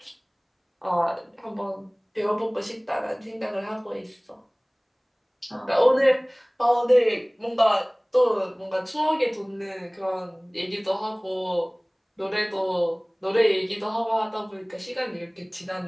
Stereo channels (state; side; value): identical; both; correlation 1.00